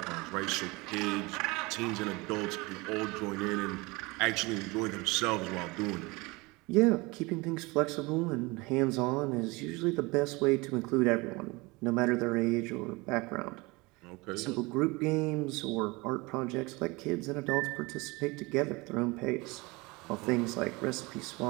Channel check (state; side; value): quieter; left; 24.6 dB